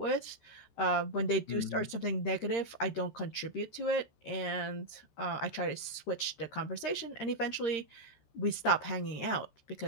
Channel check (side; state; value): right; late; 13 ms